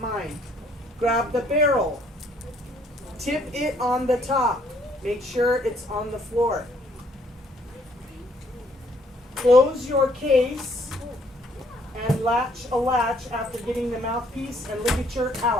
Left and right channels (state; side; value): normal; both; correlation 0.65